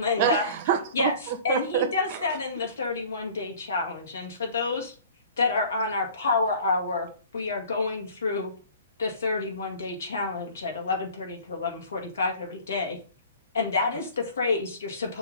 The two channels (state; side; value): inverted; both; correlation -0.46